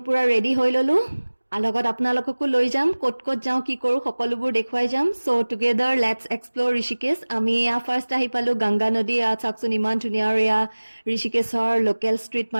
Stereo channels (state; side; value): inverted; both; correlation -1.00